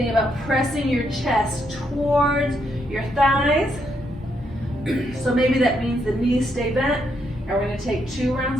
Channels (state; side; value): normal; both; correlation 0.77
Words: about pressing your chest towards your thighs. So maybe that means the knees stay bent. And we're going to take 2